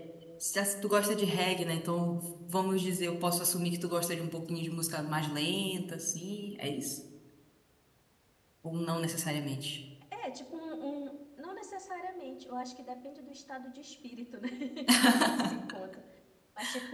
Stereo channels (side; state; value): both; identical; correlation 1.00